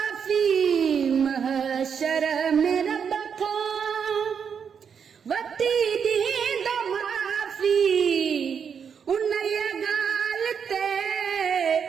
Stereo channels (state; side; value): quieter; left; 7.0 dB